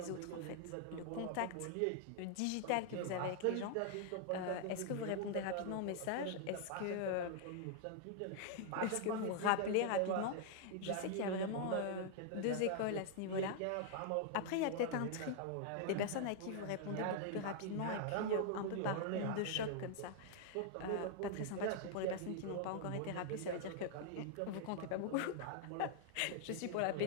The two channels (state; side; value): different; both; correlation -0.01